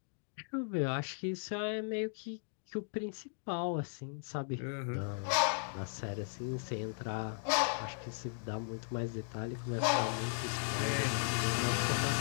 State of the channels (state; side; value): silent; right; digital silence